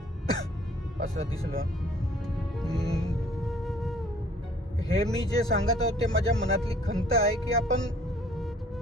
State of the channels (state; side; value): normal; both; correlation 0.56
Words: असं दिसलं. हे मी जे सांगत आहोत ते माझ्या मनातली खंत आहे की आपण